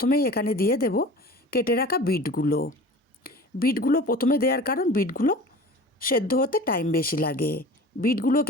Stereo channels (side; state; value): both; normal; correlation 0.39